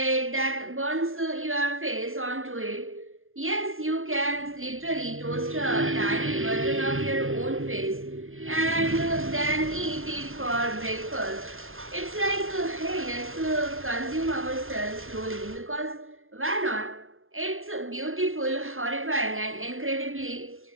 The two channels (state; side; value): late; left; 0.61 ms